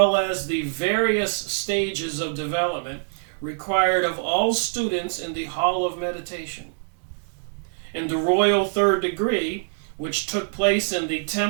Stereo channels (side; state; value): left; silent; digital silence